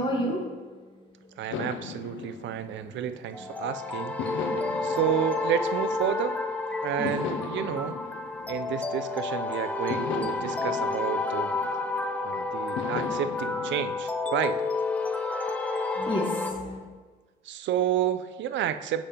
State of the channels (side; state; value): both; normal; correlation 0.40